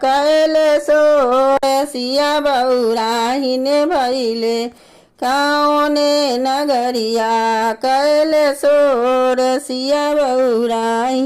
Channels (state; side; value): identical; both; correlation 1.00